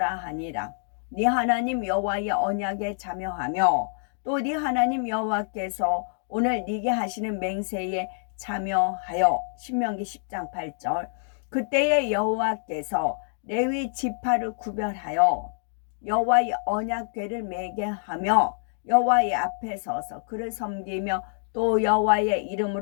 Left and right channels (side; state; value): right; silent; 61 dB below the other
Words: 하니라. 네 하나님 여호와의 언약에 참여하며 또 네 하나님 여호와께서 오늘 네게 하시는 맹세에 참여하여. 신명기 10장 8절. 그때에 여호와께서 레위 지파를 구별하여 여호와의 언약궤를 메게 하며 여호와의 앞에 서서 그를 섬기며 또 여호와의